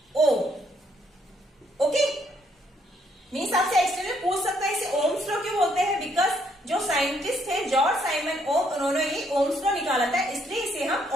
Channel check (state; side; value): normal; both; correlation 0.70